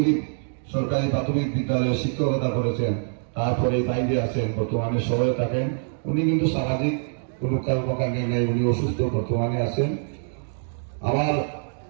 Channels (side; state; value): left; silent; digital silence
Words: সরকারি প্রাথমিক বিদ্যালয়ে শিক্ষকতা করেছেন। তারপরে বাইরে আছেন, বর্তমানে শহরে থাকেন। উনি কিন্তু সামাজিক কোনো কর্মকাণ্ডে নেই, উনি অসুস্থ, বর্তমানে আছেন। আমার